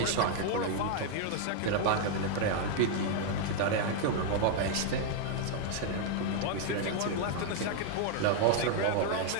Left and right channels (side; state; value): both; different; correlation 0.00